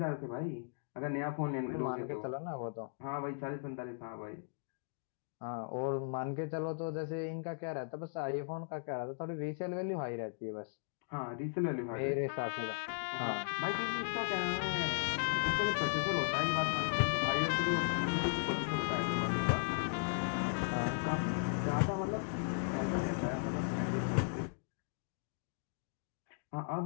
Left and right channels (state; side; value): silent; right; digital silence